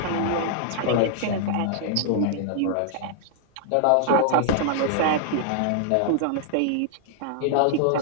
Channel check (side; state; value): both; different; correlation -0.01